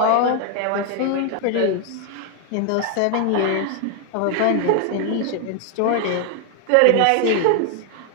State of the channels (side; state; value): both; different; correlation 0.00